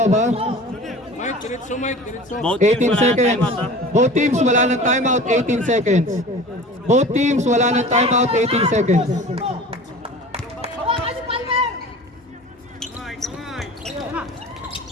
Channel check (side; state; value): both; normal; correlation 0.39